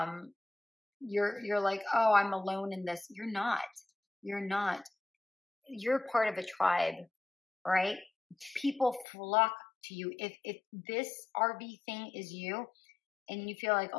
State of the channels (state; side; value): drops out; right; at 9.1 s